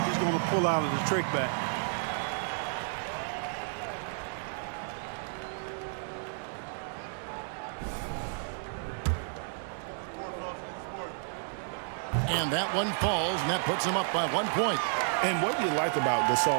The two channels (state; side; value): silent; left; 57 dB below the other